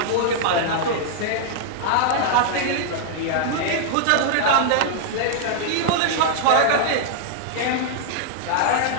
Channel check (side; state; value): both; different; correlation -0.01